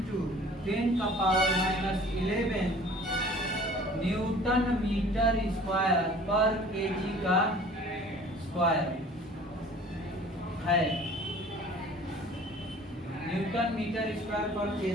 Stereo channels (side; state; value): both; normal; correlation 0.48